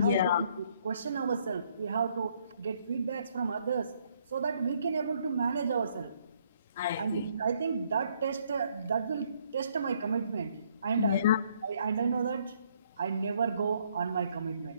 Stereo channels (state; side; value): inverted; both; correlation -0.68